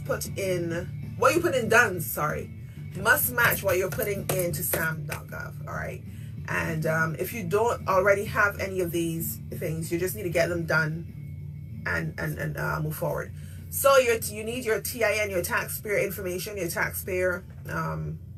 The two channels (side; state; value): both; identical; correlation 1.00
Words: put in, what you put in DUNS, sorry, must match what you're putting into sam.gov, all right? And if you don't already have any of these things, you just need to get them done and move forward. So you need your TIN, your taxpayer information, your taxpayer